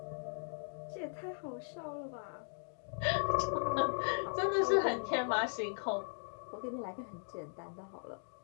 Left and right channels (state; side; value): silent; right; digital silence